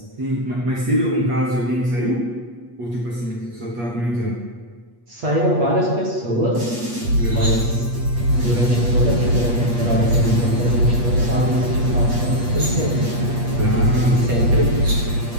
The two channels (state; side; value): late; left; 8.4 ms